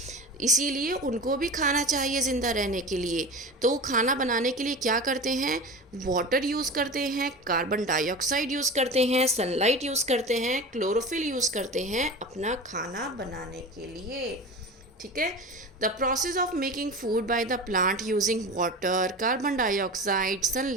इसीलिए उनको भी खाना चाहिए ज़िंदा रहने के लिए। तो वो खाना बनाने के लिए क्या करते हैं? वाटर यूज़ करते हैं, कार्बन डाइऑक्साइड यूज़ करते हैं, सनलाइट यूज़ करते हैं, क्लोरोफिल यूज़ करते हैं अपना खाना बनाने के लिए, ठीक है। The process of making food by the plant using water, carbon dioxide,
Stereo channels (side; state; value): both; normal; correlation 0.31